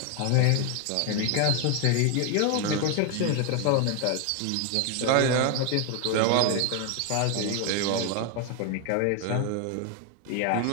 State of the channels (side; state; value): both; different; correlation 0.01